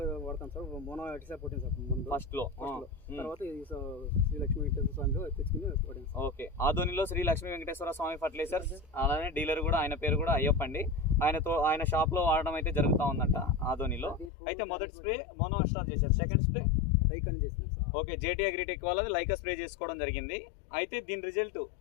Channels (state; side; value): drops out; right; at 14.3 s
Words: వాడతాం సార్. మోనో అటిసా కొట్టింది సార్ ముందు ఫస్ట్ లో. తర్వాత శ్రీ లక్ష్మీ వెంకటేశ్వర స్వామిలో తెచ్చుకుని కొట్టింది. ఓకే. ఆదోనిలో శ్రీ లక్ష్మీ వెంకటేశ్వర స్వామి ఫర్టిలైజర్స్, అలానే డీలర్ కూడా ఆయన పేరు కూడా అయ్యప్ప అండి. ఆయన షాప్ లో వాడడం అయితే జరుగుతూ ఉందంట ఆదోనిలో. అయితే మొదటి స్ప్రే మోనో అస్ట్రా చేశారు, సెకండ్ స్ప్రే లైక్ అని చేసినాం సార్. ఓకే, జేటీ అగ్రిటెక్ వాళ్ళది లైకా స్ప్రే చేసుకోవడం జరిగింది. అయితే దీని రిజల్ట్